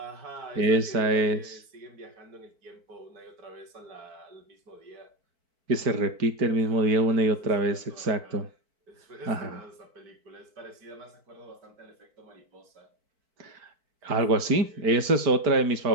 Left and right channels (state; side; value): late; left; 4.5 ms